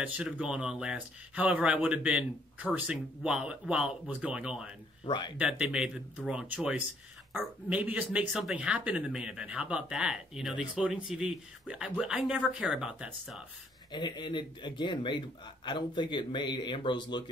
should have gone on last. However, I would have been cursing while it was going on. Right. That they made the wrong choice. Or maybe just make something happen in the main event. How about that? The exploding TV. I never care about that stuff. And it again made. I don't think it made Ambrose look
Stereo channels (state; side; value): normal; both; correlation 0.66